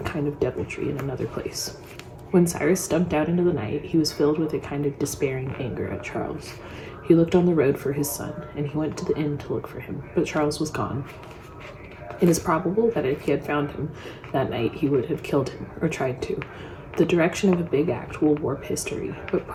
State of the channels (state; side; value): identical; both; correlation 1.00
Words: kind of deviltry in another place. When Cyrus stumped out into the night, he was filled with a kind of despairing anger at Charles. He looked on the road for his son, and he went to the inn to look for him, but Charles was gone. It is probable that if he had found him that night, he would have killed him, or tried to. The direction of a big act will warp history, but